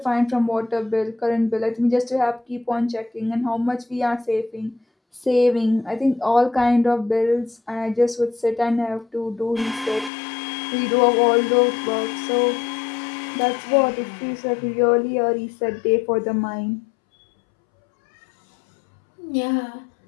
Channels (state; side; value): drops out; right; at 10.1 s